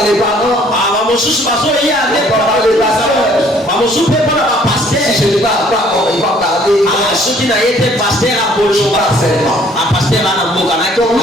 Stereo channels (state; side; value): normal; both; correlation 0.59